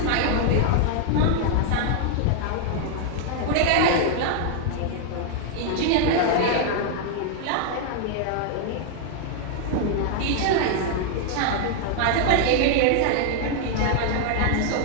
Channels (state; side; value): different; both; correlation 0.00